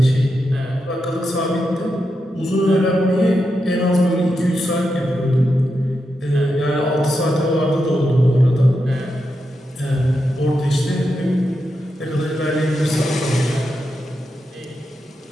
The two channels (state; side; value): normal; both; correlation 0.86